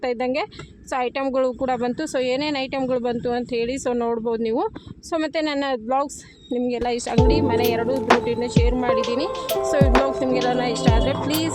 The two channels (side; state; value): both; identical; correlation 1.00